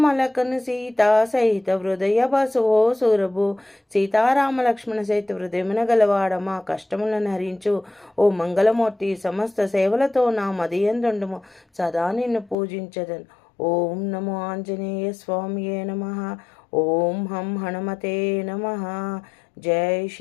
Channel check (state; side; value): drops out; right; at 12.6 s